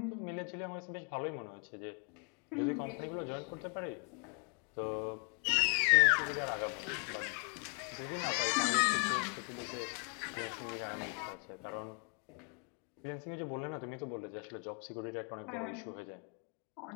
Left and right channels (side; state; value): right; quieter; 39.9 dB